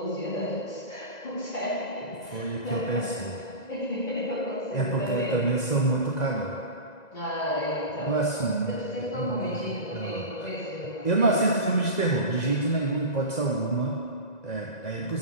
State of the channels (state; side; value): late; right; 2.0 ms